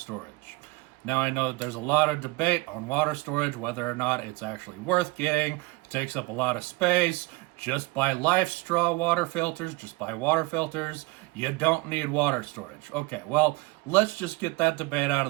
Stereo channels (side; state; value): left; quieter; 23.6 dB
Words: Now I know that there's a lot of debate on water storage, whether or not it's actually worth getting. It takes up a lot of space. Just buy Life Straw water filters, just buy water filters. You don't need water storage. Okay, well, let's just get that debate out of